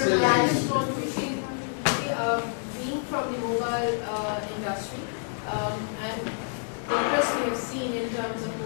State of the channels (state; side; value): silent; right; digital silence